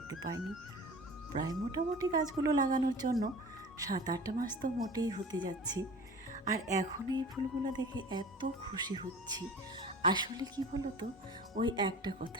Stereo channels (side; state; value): both; normal; correlation 0.40